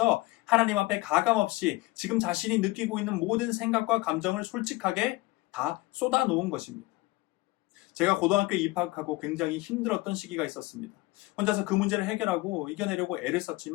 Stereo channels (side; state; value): right; quieter; 21.0 dB